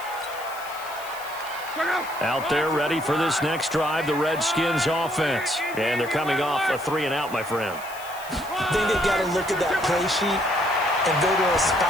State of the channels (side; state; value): left; noise; hiss, 17 dB below the sound